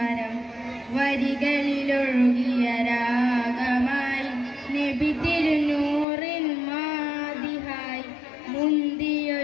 വരികളിലൊഴുകിയ രാഗമായി നബി തിരുനൂറിൻ മാതിഹായി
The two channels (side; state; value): right; drops out; at 6.1 s